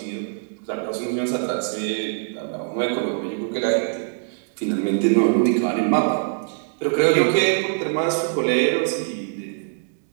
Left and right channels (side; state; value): left; silent; 63 dB below the other